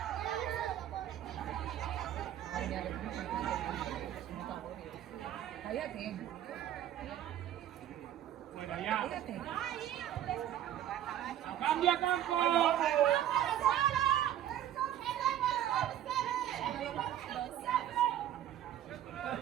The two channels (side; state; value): left; quieter; 11.5 dB